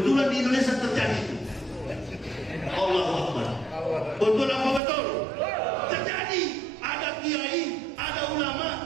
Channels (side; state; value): left; drops out; at 4.8 s